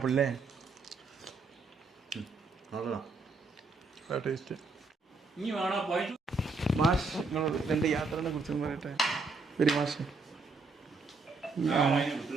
അല്ലേ? ടേസ്റ്റ്. മാഷ് നിങ്ങൾ എൻ്റെ യാത്രയെ കുറിച്ച് പറയട്ടെ. ഒരു മാഷ്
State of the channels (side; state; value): left; quieter; 3.9 dB